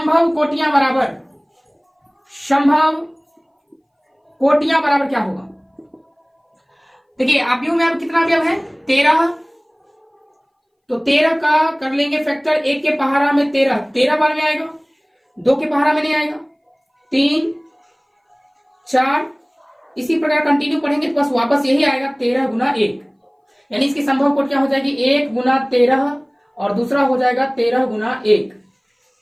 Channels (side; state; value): both; identical; correlation 1.00